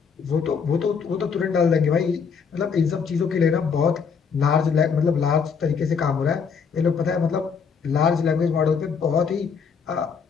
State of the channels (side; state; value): right; quieter; 6.1 dB